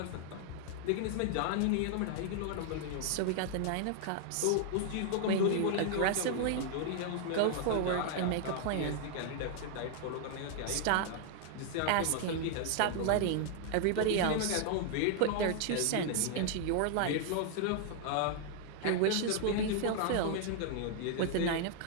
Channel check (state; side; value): different; both; correlation -0.01